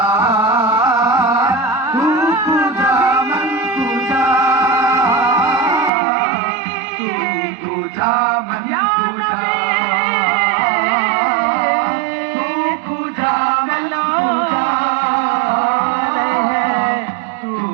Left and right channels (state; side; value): drops out; left; at 5.9 s